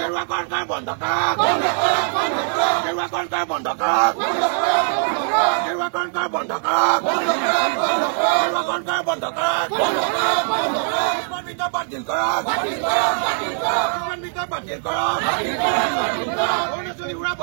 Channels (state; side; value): silent; left; 65 dB below the other